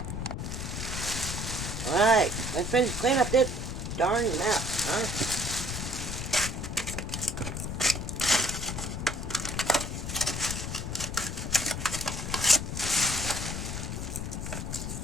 Alright, let's finish cleaning up this darn mess, huh?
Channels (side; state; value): left; noise; rumble, 4 dB below the sound